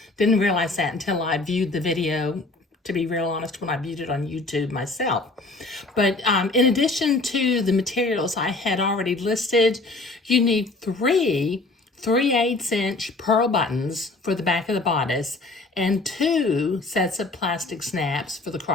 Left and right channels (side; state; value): right; quieter; 3.2 dB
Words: Didn't realize that until I viewed the video, to be real honest, when I viewed it on YouTube myself. But in addition to the materials I had already listed, you need 3 3/8" pearl buttons for the back of the bodice and 2 sets of plastic snaps for the